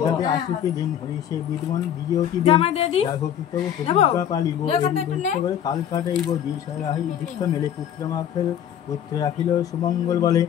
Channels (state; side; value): quieter; right; 9.7 dB